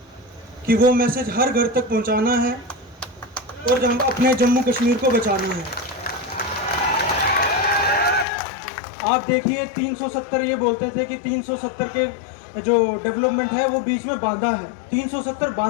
कि वो मैसेज हर घर तक पहुँचाना है और अपने जम्मू कश्मीर को बचाना है। आप देखिए 370, ये बोलते थे कि 370 के जो डेवलपमेंट है वो बीच में बांधा है। 370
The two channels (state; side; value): drops out; right; at 8.2 s